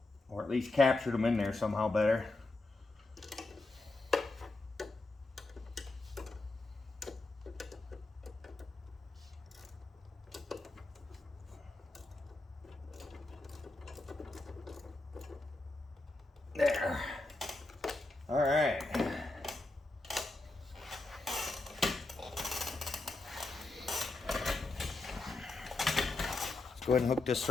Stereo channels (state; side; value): quieter; right; 3.1 dB